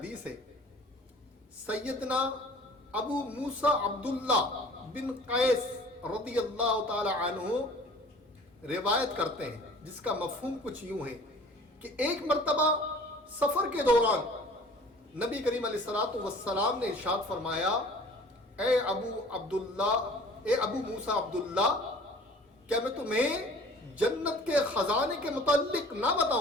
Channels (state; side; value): normal; both; correlation 0.48